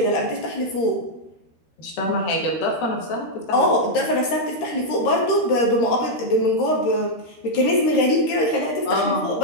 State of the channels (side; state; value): right; late; 13 ms